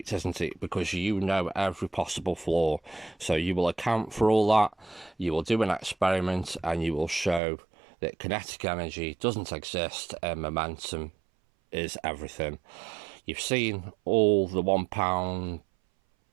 isn't it? Because you know every possible flaw. So you will account for all that. You will do an experiment and you will show that kinetic energy doesn't exist and momentum is everything. You've seen all the £1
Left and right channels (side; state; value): left; drops out; at 7.4 s